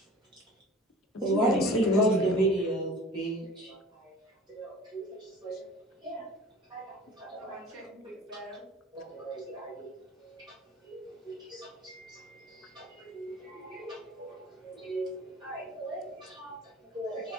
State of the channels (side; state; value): both; normal; correlation 0.43